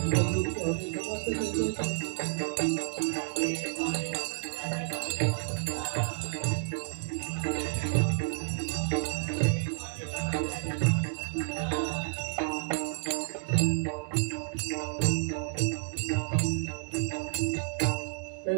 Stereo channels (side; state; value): left; silent; digital silence